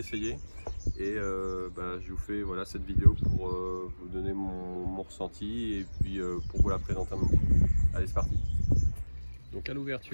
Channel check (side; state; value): both; inverted; correlation -1.00